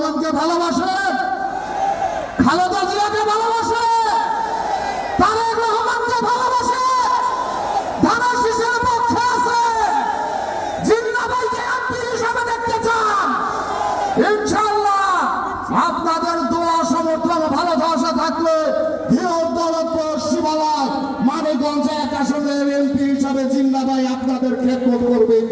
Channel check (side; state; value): both; identical; correlation 1.00